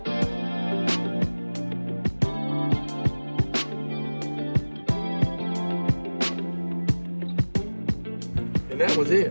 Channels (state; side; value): inverted; both; correlation -1.00